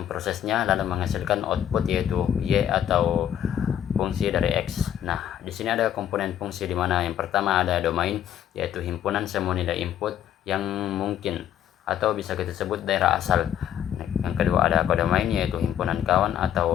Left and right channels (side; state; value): right; quieter; 10.4 dB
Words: lalu menghasilkan output yaitu Y atau fungsi dari X. Nah, di sini ada komponen fungsi di mana yang pertama ada domain yaitu himpunan semua nilai input yang mungkin atau bisa kita sebut daerah asal. Yang kedua ada kodomain yaitu himpunan kawan